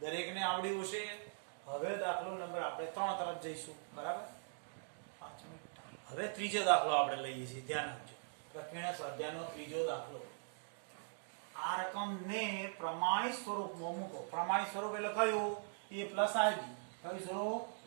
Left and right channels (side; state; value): left; silent; digital silence